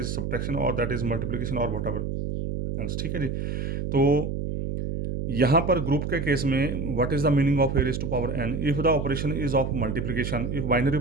सब्ट्रैक्शन और दैट इज मल्टीप्लिकेशन और वट एवर एल्स, ठीक है जी। तो यहाँ पर ग्रुप के केस में what is the meaning of A raise to power n, if the operation is of multiplication, if binary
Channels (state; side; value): noise; right; hum, 3 dB below the sound